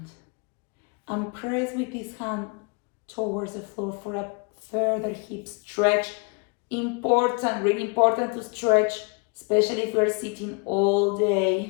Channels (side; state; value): right; quieter; 33.1 dB